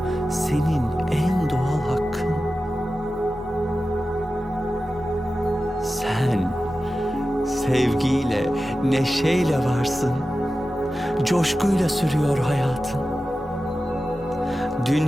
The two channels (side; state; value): both; normal; correlation 0.93